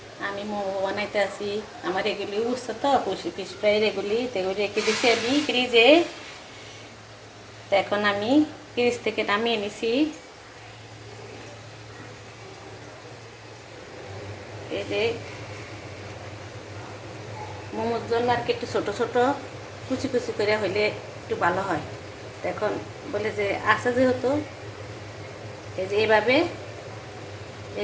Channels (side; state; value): both; identical; correlation 1.00